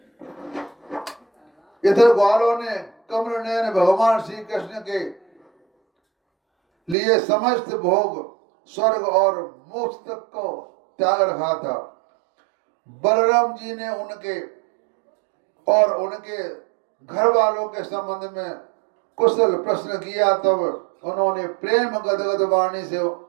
इधर ग्वालों ने कमल नयन भगवान श्री कृष्ण के लिए समस्त भोग स्वर्ग और मोक्ष तक को त्याग रखा था। बलराम जी ने उनके और उनके घर वालों के संबंध में कुशल प्रश्न किया। तब उन्होंने प्रेम गदगद वाणी से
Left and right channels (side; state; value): left; drops out; at 7.0 s